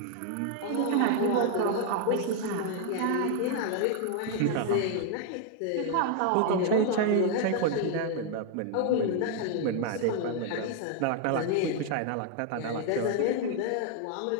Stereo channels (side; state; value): both; different; correlation 0.00